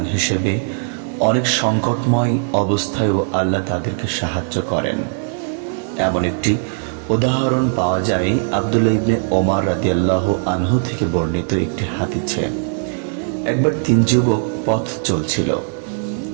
হিসেবে অনেক সংকটময় অবস্থায়ও আল্লাহ তাদেরকে সাহায্য করেন। এমন একটি উদাহরণ পাওয়া যায় আব্দুল্লাহ ইবনে ওমর রাদিয়াল্লাহু আনহু থেকে বর্ণিত একটি হাদিসে। একবার 3 যুবক পথ চলছিল।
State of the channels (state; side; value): silent; left; digital silence